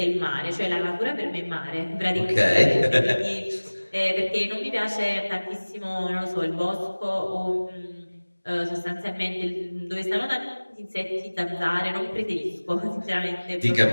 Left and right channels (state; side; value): inverted; both; correlation -1.00